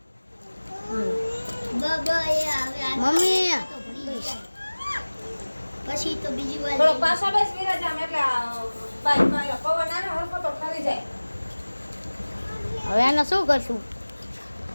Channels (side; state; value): both; inverted; correlation -1.00